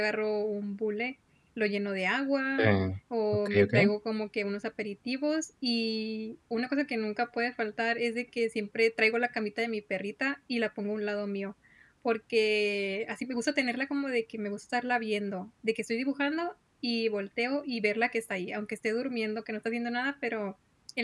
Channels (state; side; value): identical; both; correlation 1.00